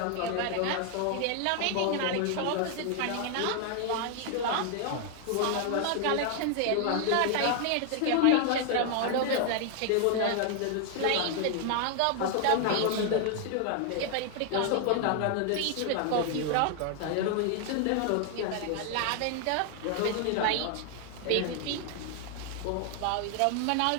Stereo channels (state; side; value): different; both; correlation 0.00